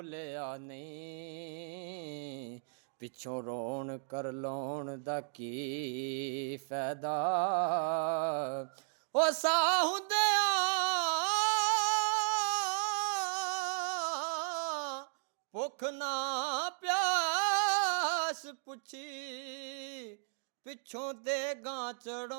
ਨਹੀਂ, ਪਿੱਛੋਂ ਰੋਣ ਕਰ ਲਾਉਣ ਦਾ ਕੀ ਫਾਇਦਾ। ਉਹ ਸਾਹ ਹੁੰਦਿਆਂ ਭੁੱਖ ਨਾ ਪਿਆਸ ਪੁੱਛੀ, ਪਿੱਛੋਂ ਦੇਗਾਂ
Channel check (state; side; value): silent; left; digital silence